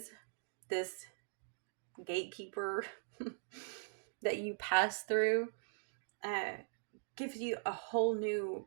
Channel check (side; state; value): left; silent; digital silence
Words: this gatekeeper that you pass through, gives you a whole new